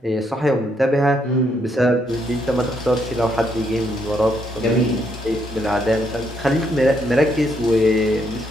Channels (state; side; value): normal; both; correlation 0.74